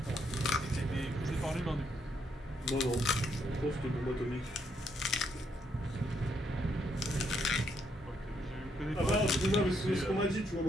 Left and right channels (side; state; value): both; normal; correlation 0.75